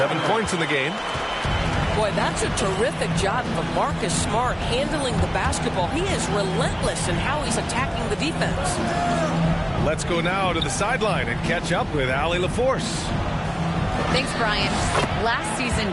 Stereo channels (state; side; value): identical; both; correlation 1.00